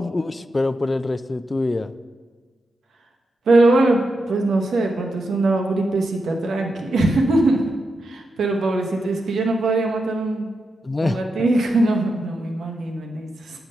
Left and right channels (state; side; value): normal; both; correlation 0.87